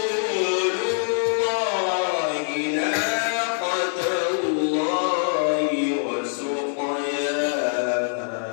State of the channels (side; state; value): right; silent; digital silence